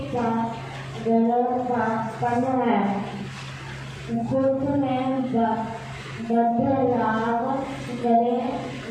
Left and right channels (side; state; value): both; identical; correlation 1.00